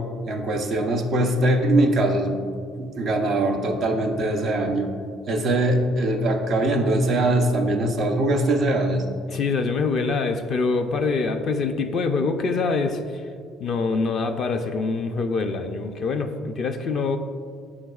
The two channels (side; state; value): both; normal; correlation 0.62